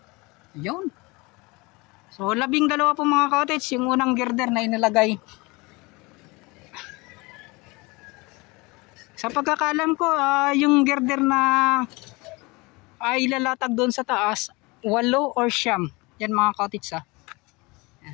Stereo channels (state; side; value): quieter; right; 25.0 dB